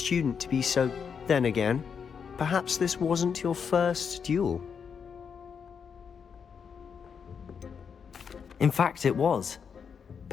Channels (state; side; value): quieter; right; 6.6 dB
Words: to be so... Then again, perhaps this wasn't your first duel. In fact, it was.